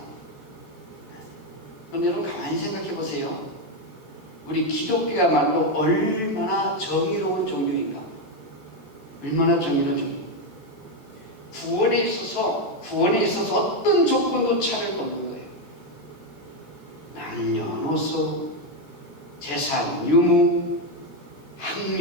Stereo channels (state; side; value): late; right; 14 ms